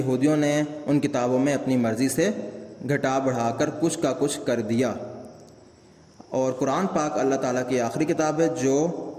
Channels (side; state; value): both; identical; correlation 1.00